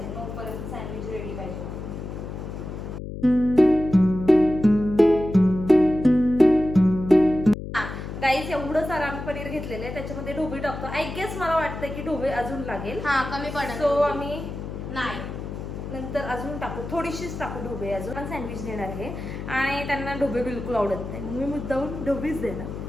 9 पर्यंत सँडविच रेडी पाहिजे. गाईस एवढं सारं आम्ही पनीर घेतलेलं आहे, त्याच्यामध्ये ढोबळी टाकतो. आय गेस मला वाटतं की ढोबळी अजून लागेल. हा कमी पडेल. सो आम्ही नाही नंतर अजून टाकू, थोडीशीच टाकू ढोबळे अजून. पण सँडविच देणार आहे आणि त्यांना ढोबळे बिलकुल आवडत नाही, मी मुद्दाहून ढोबळीच देणार.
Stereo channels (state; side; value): noise; left; hum, 8 dB below the sound